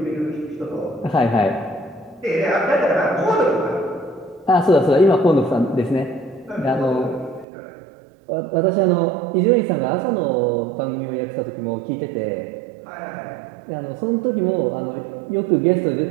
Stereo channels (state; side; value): drops out; left; at 7.5 s